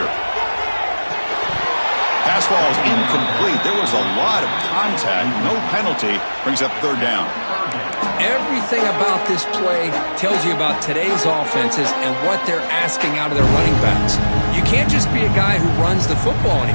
Pass ball is incomplete. There was a lot of contact. No penalty. Brings up third down. everything about this play tells you about today's offenses and what they're asking out of their running backs. You can't just be a guy who runs the football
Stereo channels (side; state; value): both; inverted; correlation -1.00